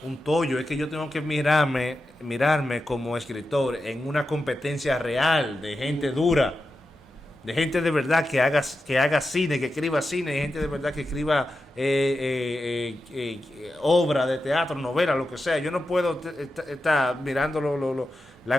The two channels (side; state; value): both; normal; correlation 0.90